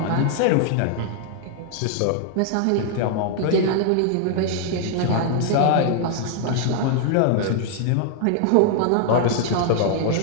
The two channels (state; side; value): different; both; correlation 0.00